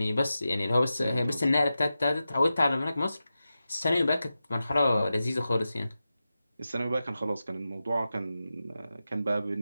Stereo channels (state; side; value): inverted; both; correlation -0.92